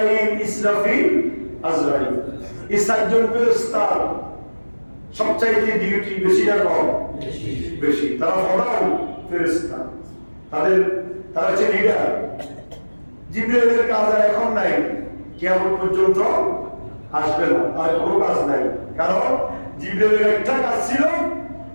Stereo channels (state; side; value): inverted; both; correlation -1.00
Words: ইসরাফিল, আজরাইল, এই 4 জন ফেরেশতার সবচাইতে ডিউটি বেশি না কম? বেশি। তারা প্রধান ফেরেশতা, তারা হচ্ছে লিডার। জিবরাইলের কাজ আর এখন নাই, কিয়ামত পর্যন্ত আসবে না, আর কোনো কাজ নাই। কারণ জিবরাইলের একটা কাজ ছিল,